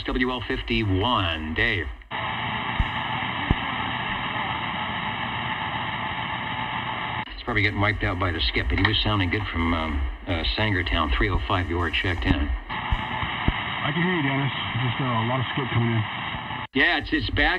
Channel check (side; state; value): both; identical; correlation 1.00